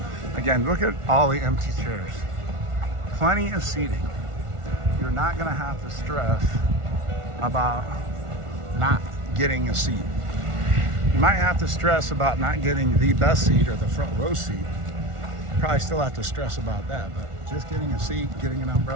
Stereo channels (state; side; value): late; left; 1.4 ms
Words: Again, look at all the empty chairs. Plenty of seating. You're not going to have to stress about not getting a seat. You might have to stress about not getting the best seat or the front row seat. Probably still have to stress about that, but just getting a seat, getting an